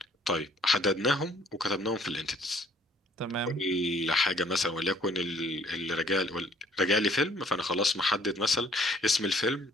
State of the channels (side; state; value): both; normal; correlation 0.59